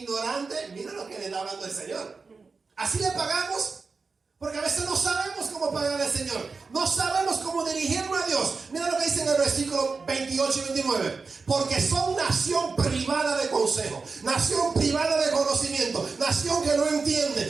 ignorante. Mira lo que le está hablando el Señor. Así le pagamos. Porque a veces no sabemos cómo pagar al Señor. No sabemos cómo dirigirnos a Dios. Mira lo que dice en el versículo 28 y 29. Porque son nación privada de consejo, nación privada de conocimiento, nación que no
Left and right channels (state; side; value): quieter; left; 4.5 dB